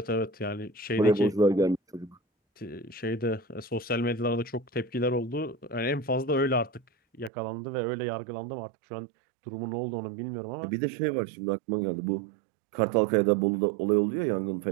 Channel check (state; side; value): drops out; left; at 7.3 s